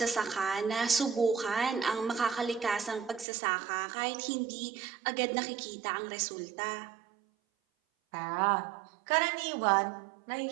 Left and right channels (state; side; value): drops out; left; at 3.2 s